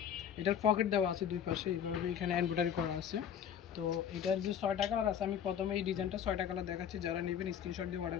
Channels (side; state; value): right; quieter; 8.6 dB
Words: এটার পকেট দেওয়া আছে দুই পাশে, এইভাবে এখানে এমব্রয়ডারি করা আছে। তো এটার যে 6টা কালার আছে, আমি প্রথমে এই ডিজাইনটা 6টা কালার দেখাচ্ছি। যারা নেবেন স্ক্রিনশট দিয়ে অর্ডার